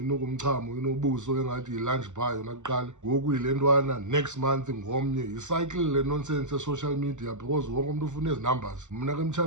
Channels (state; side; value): late; left; 0.84 ms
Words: ukumchamo inobuso engathi yi-lunch bar yona kuqala. Ngoku yile ntwana next month ngomnye yicycle le nonsense e-social media because wonke umuntu ufuna ezi numbers. Mna ke